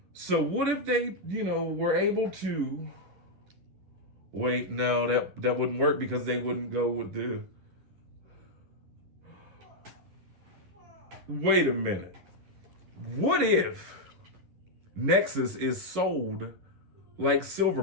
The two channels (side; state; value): left; late; 11 ms